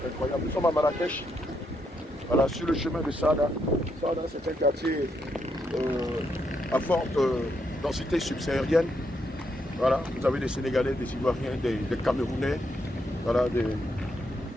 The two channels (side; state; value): both; normal; correlation 0.78